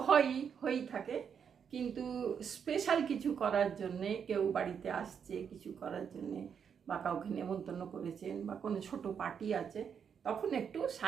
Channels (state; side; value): quieter; left; 7.3 dB